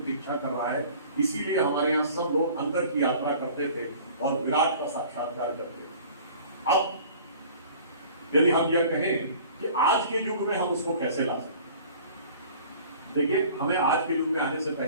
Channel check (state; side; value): inverted; both; correlation -0.47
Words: कर रहा है। इसीलिए हमारे यहाँ सब लोग अंदर की यात्रा करते थे और विराट का साक्षात्कार करते थे। अब यदि हम यह कहें कि आज के युग में हम उसको कैसे ला सकते, देखिए हमें आज के युग में आने से